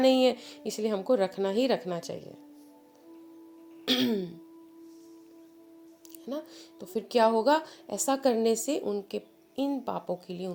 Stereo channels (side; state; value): both; identical; correlation 1.00